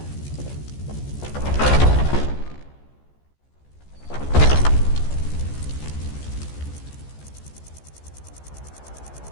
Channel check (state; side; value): late; right; 14 ms